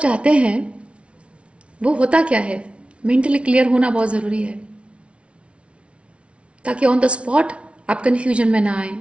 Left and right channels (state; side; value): late; left; 0.060 ms